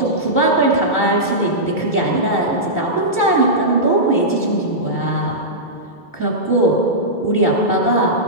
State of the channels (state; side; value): late; right; 2.3 ms